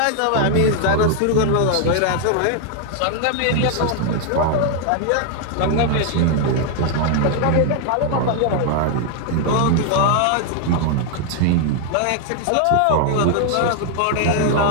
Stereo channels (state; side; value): different; both; correlation 0.00